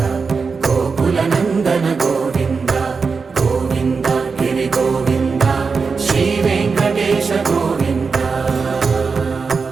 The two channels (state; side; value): quieter; left; 4.9 dB